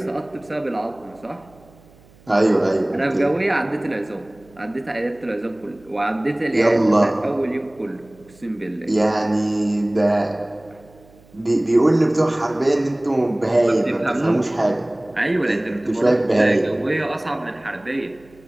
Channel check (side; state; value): right; noise; hum, 27 dB below the sound